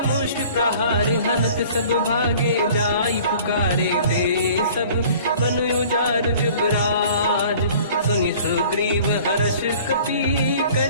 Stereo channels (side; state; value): both; inverted; correlation -0.48